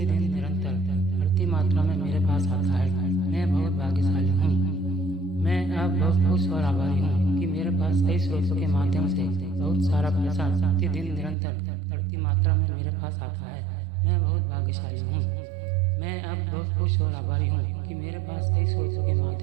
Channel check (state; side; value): drops out; left; at 11.4 s